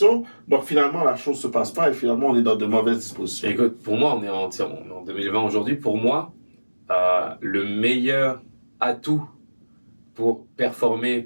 donc finalement, la chose se passe pas et finalement, on est dans de mauvaises dispositions. Écoute, pour moi, on est en 2020 aujourd'hui. Pour moi, le meilleur atout pour performer,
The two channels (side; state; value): both; inverted; correlation -1.00